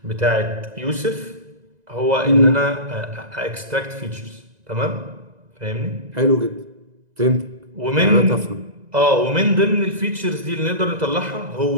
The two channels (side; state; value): left; late; 2.0 ms